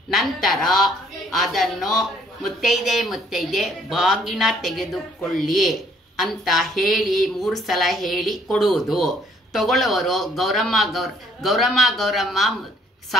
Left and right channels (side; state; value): both; normal; correlation 0.63